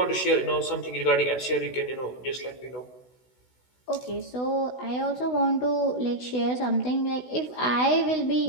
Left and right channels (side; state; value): right; late; 16 ms